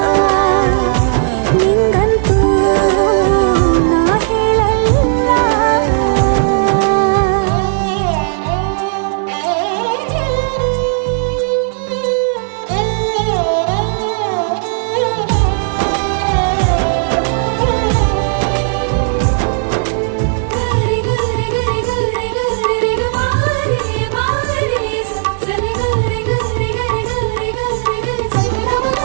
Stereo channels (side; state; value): left; silent; digital silence